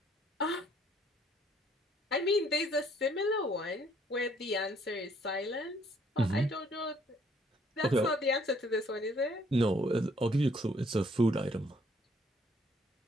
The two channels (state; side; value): normal; both; correlation 0.65